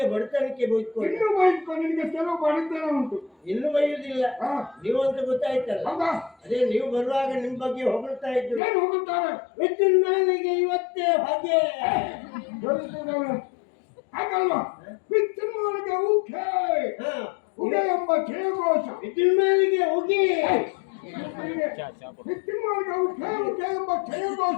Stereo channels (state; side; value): drops out; right; at 8.6 s